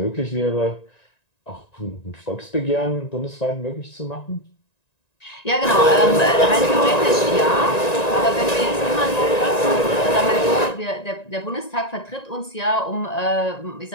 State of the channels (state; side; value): late; right; 1.9 ms